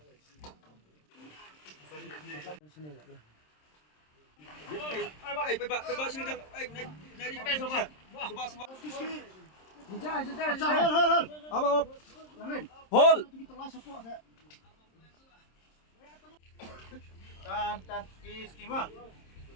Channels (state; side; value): late; right; 26 ms